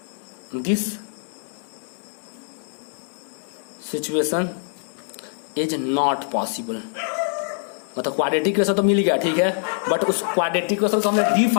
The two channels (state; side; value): silent; right; 61 dB below the other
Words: this situation is not possible. मतलब क्वाड्रेटिक इक्वेशन तो मिल गया, ठीक है, बट उस क्वाड्रेटिक इक्वेशन को हमने